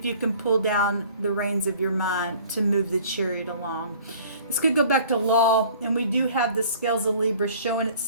you can pull down the reins of your mind to move the chariot along. This could go back to law, and we do have the scales of Libra showing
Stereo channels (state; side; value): inverted; both; correlation -0.50